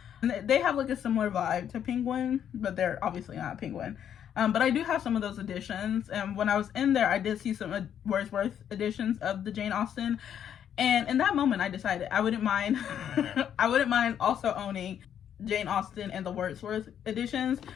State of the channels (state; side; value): quieter; right; 9.3 dB